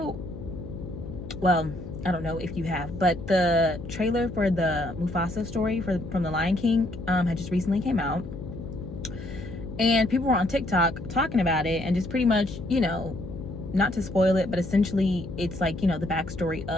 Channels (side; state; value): left; noise; hum, 11 dB below the sound